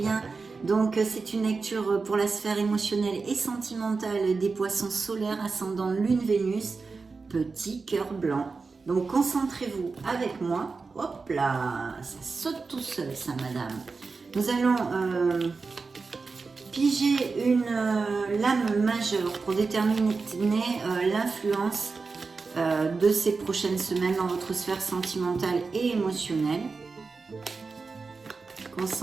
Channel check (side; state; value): left; quieter; 4.4 dB